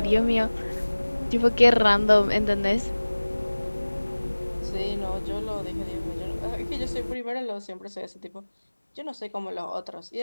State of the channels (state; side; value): inverted; both; correlation -1.00